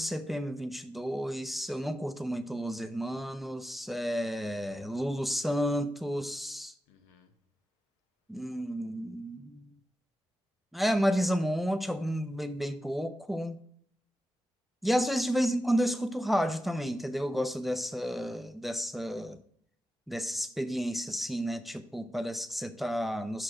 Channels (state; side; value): normal; both; correlation 0.92